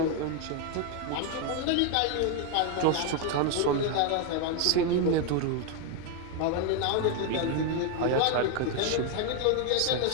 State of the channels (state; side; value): different; both; correlation 0.01